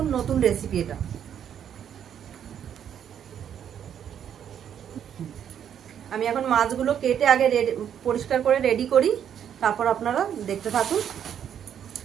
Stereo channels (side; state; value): left; quieter; 9.1 dB